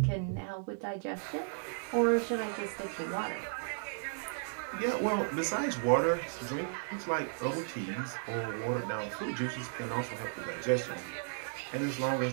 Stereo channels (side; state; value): left; silent; digital silence